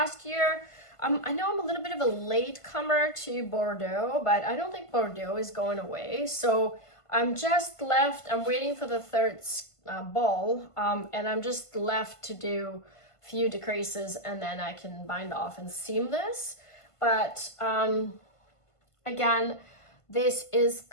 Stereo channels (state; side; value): late; right; 1.5 ms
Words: year, I know I'm a little bit of a late comer to Bordeaux, but I don't think Bordeaux is going away. So I'm waiting for the third ball, and I'm just left to do a few decreases, and then I can bind off and seam this. But again, this is